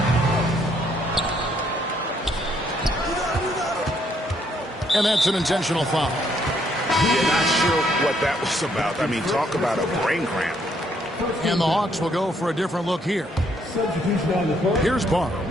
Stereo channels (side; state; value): both; normal; correlation 0.70